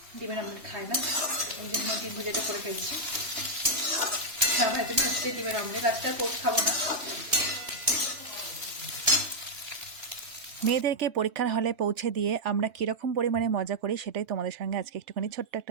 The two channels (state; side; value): late; left; 3.2 ms